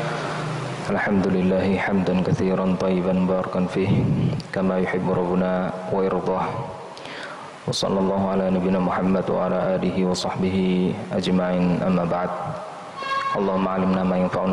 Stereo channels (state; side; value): identical; both; correlation 1.00